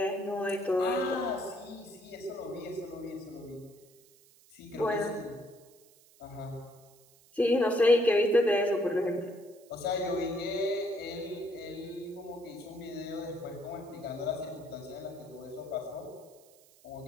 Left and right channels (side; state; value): right; noise; hiss, 27 dB below the sound